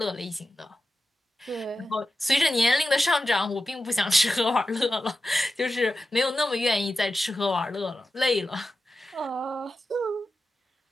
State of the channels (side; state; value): both; normal; correlation 0.92